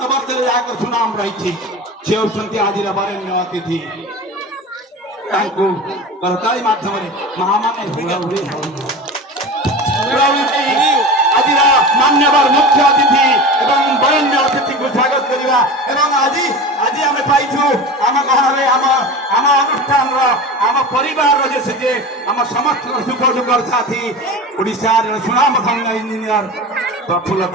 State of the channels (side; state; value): both; normal; correlation 0.31